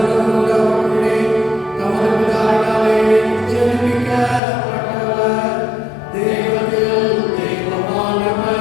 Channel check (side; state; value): right; drops out; at 4.4 s